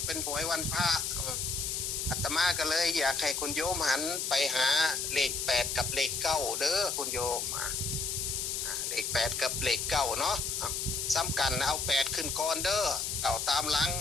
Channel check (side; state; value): left; noise; hiss, 1 dB below the sound